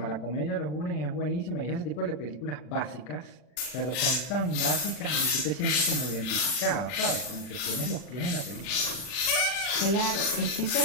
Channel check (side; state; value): right; late; 40 ms